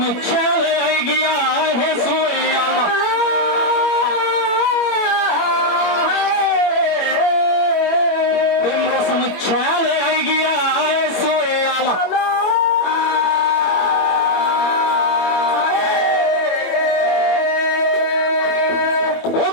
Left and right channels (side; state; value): right; late; 21 ms